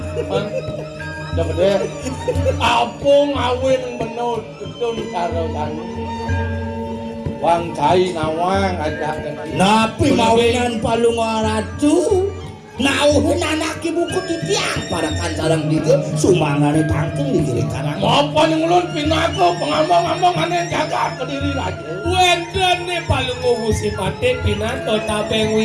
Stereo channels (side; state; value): both; identical; correlation 1.00